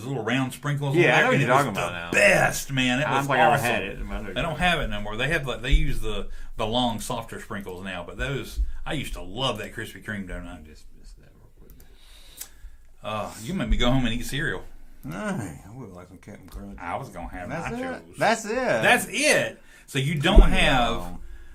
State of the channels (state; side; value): identical; both; correlation 1.00